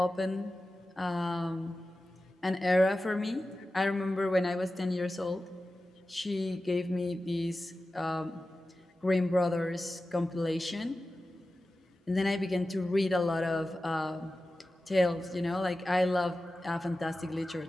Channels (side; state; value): both; normal; correlation 0.94